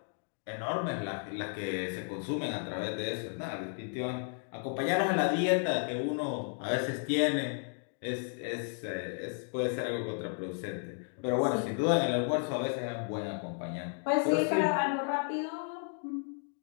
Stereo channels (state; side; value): silent; right; 56 dB below the other